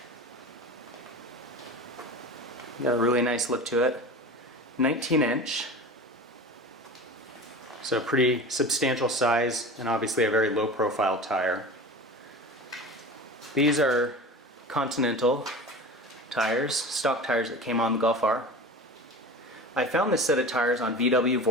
Got a really nice look to it. 19-inch, so a pretty substantial size, and obviously a very low-profile tire. These are Continental tires, stock tires that came on the Golf R. I found this set of tires on VW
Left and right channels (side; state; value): both; normal; correlation 0.33